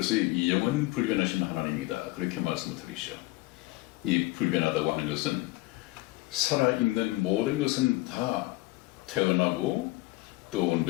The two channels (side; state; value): right; quieter; 20.7 dB